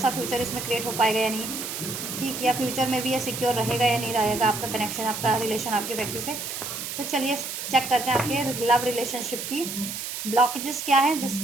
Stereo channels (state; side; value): noise; right; hiss, 6 dB below the sound